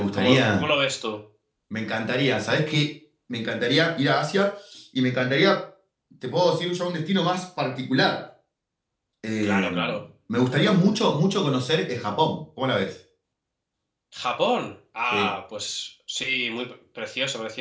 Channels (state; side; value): identical; both; correlation 1.00